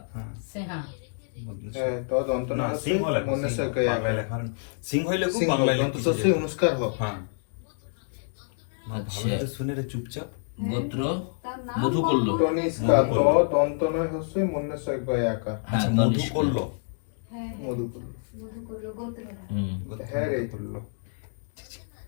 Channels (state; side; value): silent; right; digital silence